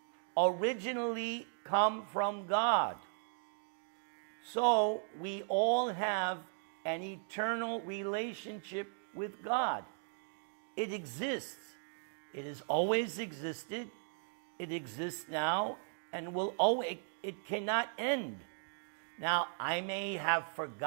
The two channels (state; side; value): silent; left; digital silence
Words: originally come from God. So we all have an eternal relationship with God. It exists. It has always existed. It exists now and will always, it cannot end. Now, I may have